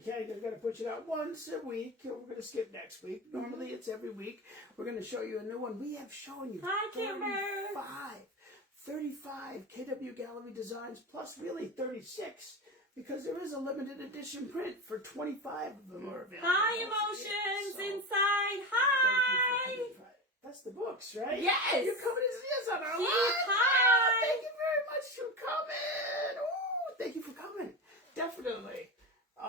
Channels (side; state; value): both; normal; correlation 0.22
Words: because we're going to push it out once a week. We're going to skip next week. Normally, it's every week. We're going to show you a new one. We have shown you 35 KW Gallery designs, plus really 36, because there is a limited edition print for 25 of them are available. Hi, emotions inside. Hi. That's the books, right? Yes. You're coming to see us on our live. Hi. Thank you very much for coming. Ooh, thank you for coming. Definitely.